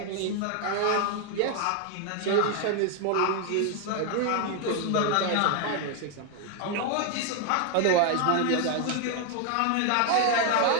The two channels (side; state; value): both; different; correlation 0.00